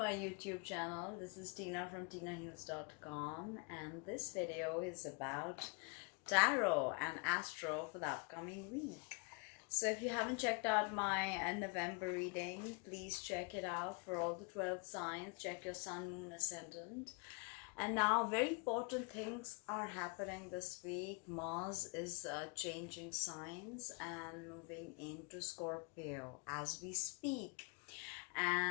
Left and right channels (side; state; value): right; quieter; 34.0 dB